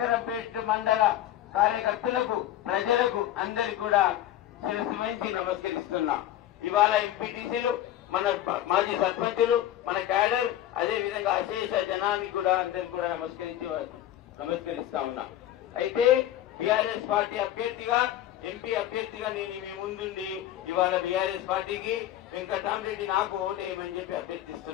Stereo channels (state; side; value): quieter; right; 12.6 dB